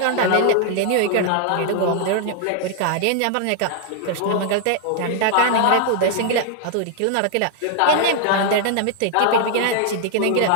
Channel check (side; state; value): both; different; correlation 0.00